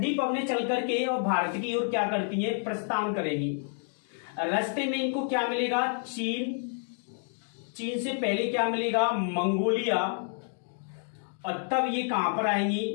पवनें चल करके और भारत की ओर क्या करती हैं, प्रस्थान करेगी। रास्ते में इनको क्या मिलेगा, चीन से पहले क्या मिलेगा, मंगोलिया, और तब ये कहां पर आएंगी,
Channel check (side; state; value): right; silent; 58 dB below the other